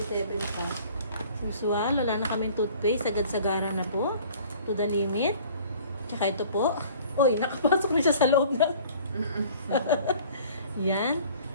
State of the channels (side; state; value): both; inverted; correlation -0.50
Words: pa. Usual, wala na kaming toothpaste, sagad-sagara na po. To the limit. Tsaka ito po. Uy, nakapasok na siya sa loob ng... Yan.